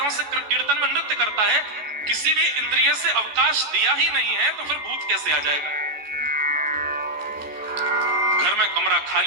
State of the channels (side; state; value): left; late; 14 ms